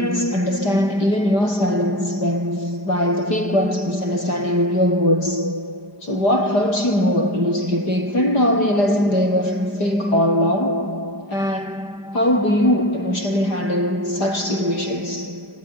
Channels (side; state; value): right; late; 5.0 ms